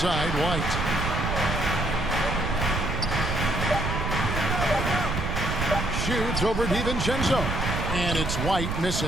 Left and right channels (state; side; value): noise; right; rumble, 2 dB below the sound